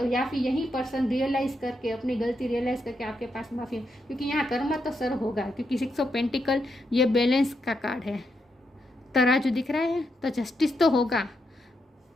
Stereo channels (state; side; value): normal; both; correlation 0.82